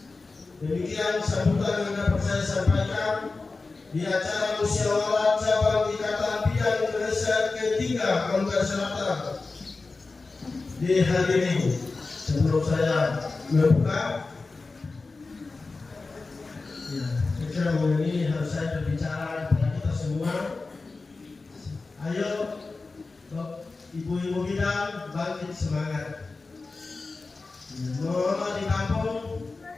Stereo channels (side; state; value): right; quieter; 3.8 dB